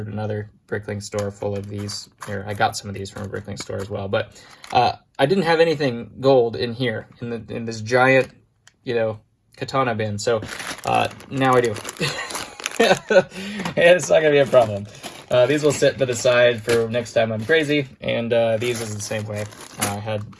another Bricklink store full of these. Here, I got some of these from a Bricklink store as well. But I didn't have anything gold in here, in this giant, katana bin. So now I do. And it's not going to be a problem. These will sit to the side for next time I'm crazy. And these is the same way. I had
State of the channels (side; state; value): both; identical; correlation 1.00